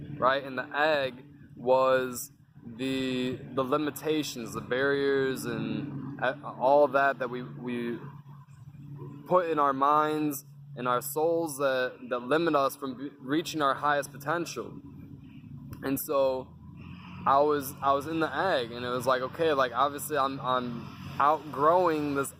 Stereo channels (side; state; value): both; identical; correlation 1.00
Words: right? And the egg was the limitations, the barriers, and all that we put in our minds and our souls that limit us from reaching our highest potential. And so I was in the egg, and it was like, okay, like obviously I'm outgrowing this